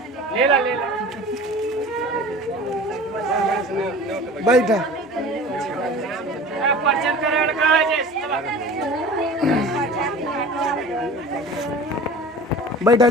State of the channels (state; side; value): normal; both; correlation 0.39